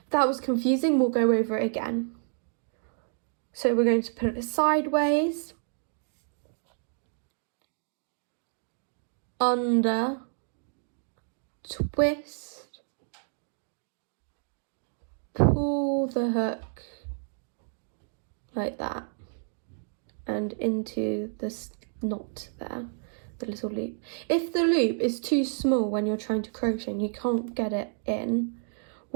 If that was confusing, we'll go over it again. So we're going to put it sideways, under, twist, pull the hook like that and into this knot there, the little loop. If the loop is too small when you're trying to crochet and you can't get it in,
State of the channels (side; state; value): left; silent; 58 dB below the other